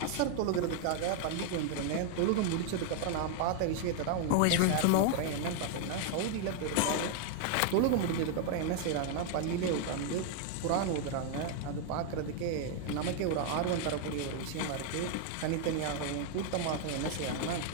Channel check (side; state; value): both; different; correlation 0.00